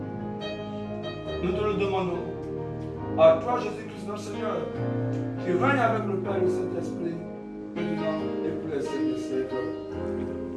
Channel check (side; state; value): both; identical; correlation 1.00